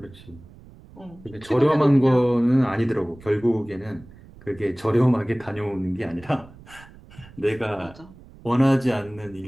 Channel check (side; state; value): right; noise; rumble, 22 dB below the sound